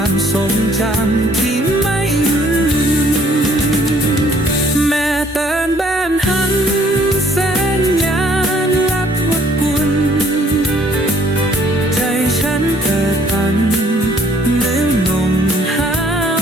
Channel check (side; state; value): both; normal; correlation 0.62